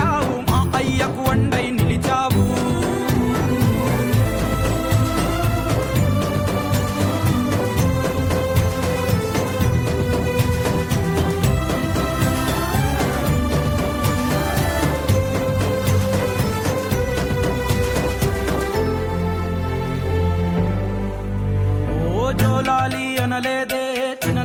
మా అయ్యకు వండై నిలిచావు. జోలాలి అనలేదే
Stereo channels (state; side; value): identical; both; correlation 1.00